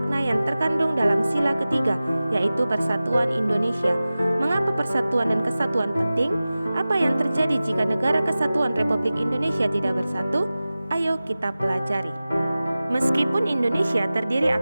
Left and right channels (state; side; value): inverted; both; correlation -0.96